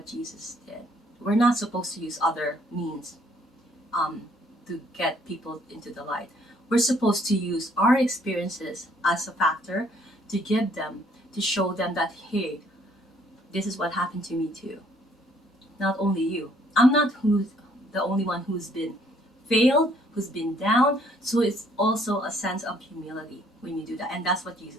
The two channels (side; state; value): both; normal; correlation 0.64